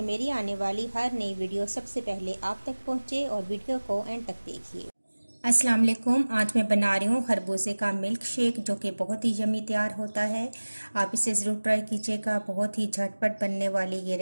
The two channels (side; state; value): both; inverted; correlation -1.00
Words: मेरी आने वाली हर नई वीडियो सबसे पहले आप तक पहुंचे और वीडियो को एंड तक देखिए। अस्सलाम वालेकुम। आज मैं बना रही हूँ खरबूजे का मिल्क शेक, जो कि बहुत ही यम्मी तैयार होता है। आप इसे ज़रूर ट्राई कीजिएगा। बहुत ही झटपट बनने वाली ये